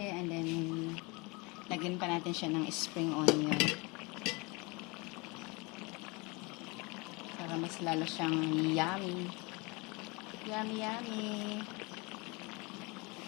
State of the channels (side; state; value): right; quieter; 27.2 dB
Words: and then lagyan pa natin siya ng spring onion para mas lalo siyang yummy. Yummy.